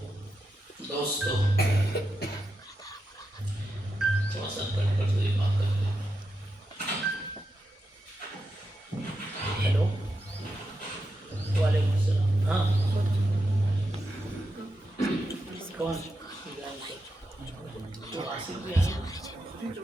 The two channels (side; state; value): both; normal; correlation 0.87